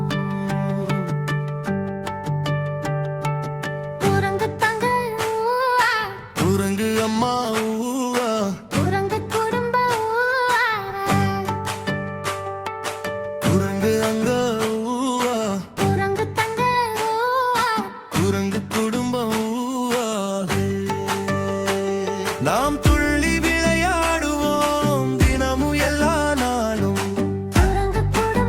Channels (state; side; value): identical; both; correlation 1.00